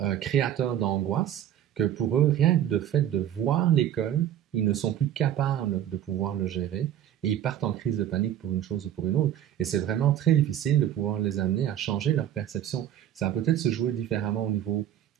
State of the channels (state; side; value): quieter; left; 11.0 dB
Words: créateur d'angoisse que pour eux, rien que le fait de voir l'école, ils ne sont plus capables de pouvoir le gérer et ils partent en crise de panique pour une chose ou pour une autre. Et c'est vraiment très difficile de pouvoir les amener à changer leur perception. Ça va peut-être se jouer différemment au niveau